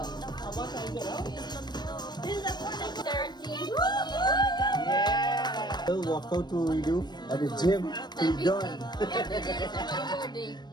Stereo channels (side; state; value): right; late; 0.21 ms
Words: 13. Yeah. We'll walk out to redo at the gym. We're done. Every day is my birthday.